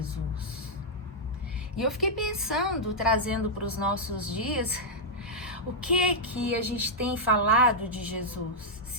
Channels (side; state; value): both; normal; correlation -0.06